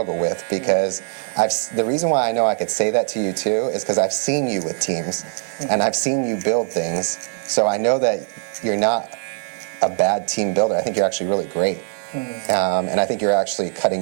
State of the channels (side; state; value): left; silent; 55 dB below the other